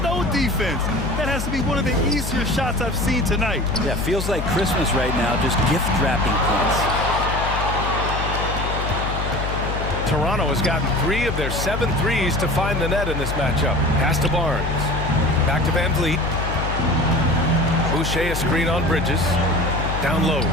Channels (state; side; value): noise; left; hum, 4 dB below the sound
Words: no defense. That has to be one of the easier shots I've seen tonight. Yeah, feels like Christmas right now, just gift wrapping points. Toronto has gotten 3 of their 7 threes to find the net in this matchup. Pass to Barnes. Back to Van Vliet. Boucher a screen on Bridges. Down low.